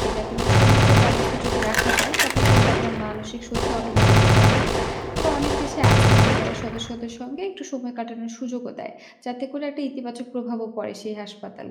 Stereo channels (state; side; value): identical; both; correlation 1.00